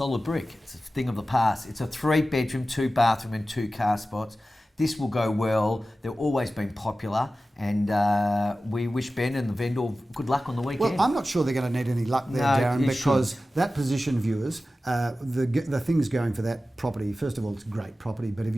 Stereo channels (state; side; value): normal; both; correlation 0.95